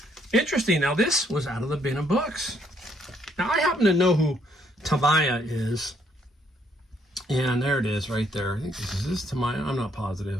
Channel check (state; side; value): normal; both; correlation 0.69